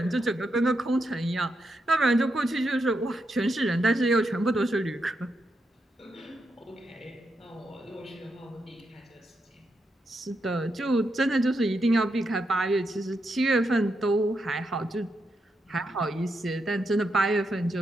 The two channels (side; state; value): both; normal; correlation 0.83